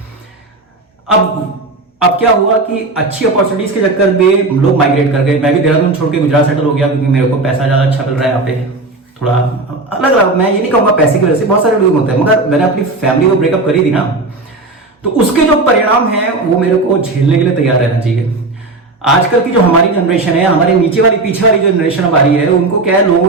अब क्या हुआ कि अच्छी अपॉर्चुनिटीज के चक्कर में लोग माइग्रेट कर गए। मैं भी देहरादून छोड़ के गुजरात सेटल हो गया, क्योंकि मेरे को पैसा ज्यादा अच्छा मिल रहा है यहाँ पे। थोड़ा अलग अलग, मैं ये नहीं कहूंगा पैसे की वजह से, बहुत सारे लोग होते हैं, मगर मैंने अपनी फैमिली को ब्रेकअप करी थी ना, तो उसके जो परिणाम है वो मेरे को झेलने के लिए तैयार रहना चाहिए। आजकल की जो हमारी जनरेशन है, हमारे नीचे वाली पीछे वाली जो जनरेशन हमारी है, उनको क्या है लोगों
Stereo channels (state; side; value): quieter; left; 3.2 dB